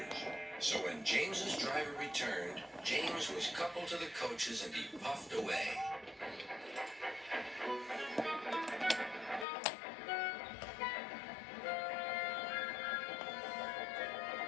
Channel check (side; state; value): right; drops out; at 9.5 s